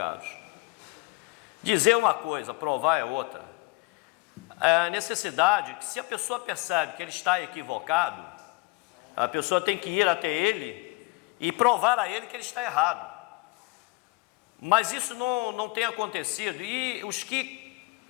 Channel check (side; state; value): right; quieter; 25.5 dB